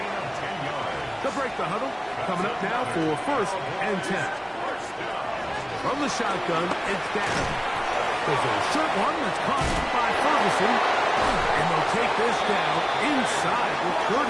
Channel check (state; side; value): identical; both; correlation 1.00